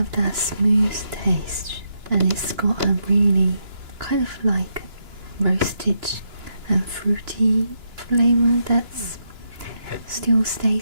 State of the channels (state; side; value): late; left; 3.0 ms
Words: that smooth taste, and it's got a really kind of like roasted and fruity flavor that still